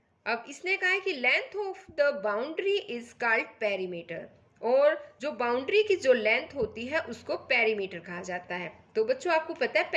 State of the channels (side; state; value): both; identical; correlation 1.00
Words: अब इसने कहा है कि length of the boundary is called perimeter, और जो बाउंड्री की जो लेंथ होती है उसको पेरीमीटर कहा जाता है। तो बच्चों आपको पता है